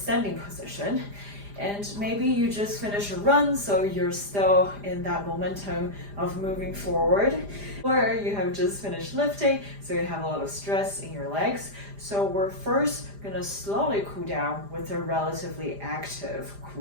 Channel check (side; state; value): left; late; 5.0 ms